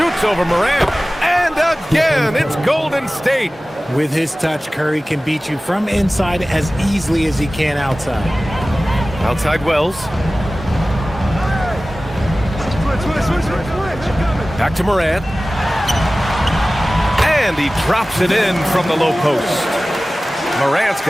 over Morant. And again, it's Golden State. With his touch, Curry can beat you from inside as easily as he can outside. Outside Wells. Back to Morant. And he drops it in from the low post. Morant's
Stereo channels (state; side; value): normal; both; correlation 0.97